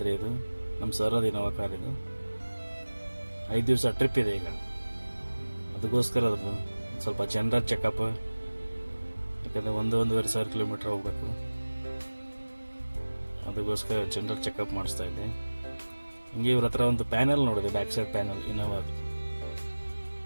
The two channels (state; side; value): inverted; both; correlation -1.00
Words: ಇದು ನಮ್ಮ ಸರದಿ ನವಕಾರ. ಇದು 5 ದಿವಸ ಟ್ರಿಪ್ ಇದೆ ಈಗ. ಅದಕ್ಕೋಸ್ಕರ ಅದು ಸ್ವಲ್ಪ ಜನರಲ್ ಚೆಕಪ್, ಯಾಕಂದರೆ 1-1.5 ಕಿಲೋಮೀಟ್ರ್ ಹೋಗ್ಬೇಕು. ಅದಕ್ಕೋಸ್ಕರ ಜನರಲ್ ಚೆಕಪ್ ಮಾಡಿಸ್ತಾ ಇದ್ದೆ. ಹಿಂಗೆ ಇವ್ರ ಹತ್ರ ಒಂದು ಪ್ಯಾನಲ್ ನೋಡಿದೆ, ಬ್ಯಾಕ್ ಸೈಡ್ ಪ್ಯಾನಲ್ ಇನೋವಾದು.